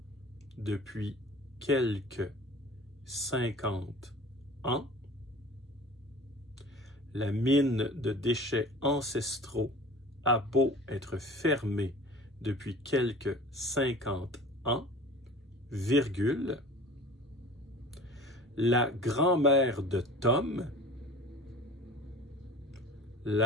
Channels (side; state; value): both; normal; correlation 0.42